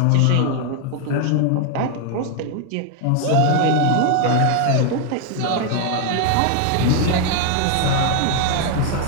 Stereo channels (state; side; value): different; both; correlation 0.00